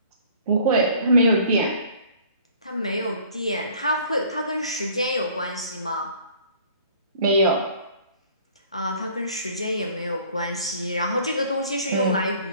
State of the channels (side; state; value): both; inverted; correlation -0.53